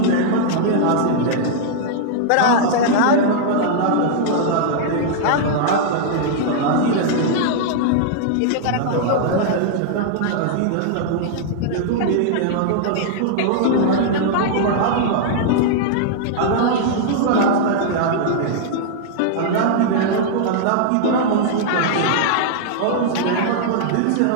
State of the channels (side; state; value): both; different; correlation -0.01